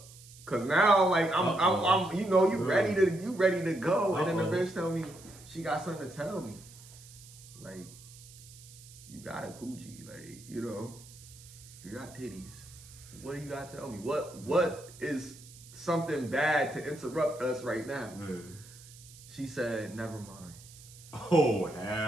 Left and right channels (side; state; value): right; noise; hiss, 20 dB below the sound